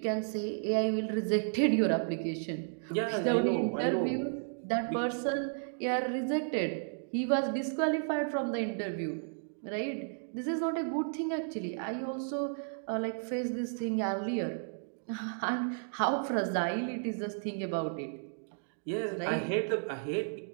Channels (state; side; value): silent; left; digital silence